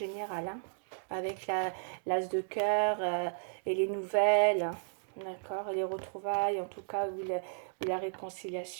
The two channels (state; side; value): silent; left; digital silence